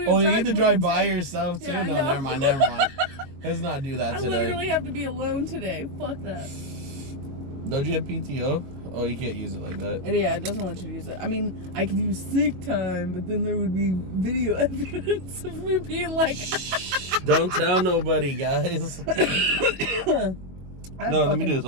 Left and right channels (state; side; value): late; left; 22 ms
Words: Oh, you need to drive by yourself too? Yeah, No, never mind. Let's not do that I today. literally have to be alone today. Fuck that. Don't you have PTO? Oh, you can't use it like that. Yeah, it doesn't want you to use it. I mean, I could use sick time, but then there would be video evidence of me being like... Don't tell nobody, guys. No, let me do